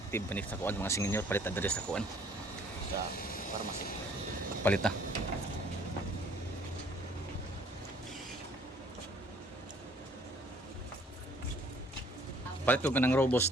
sa kuan mga senior palit adres sa kuan sa pharmacy. Palit na. Palit ko kanang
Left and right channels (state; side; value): normal; both; correlation 0.58